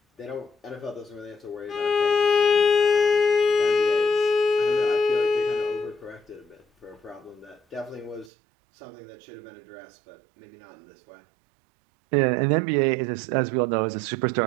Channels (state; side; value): drops out; left; at 8.3 s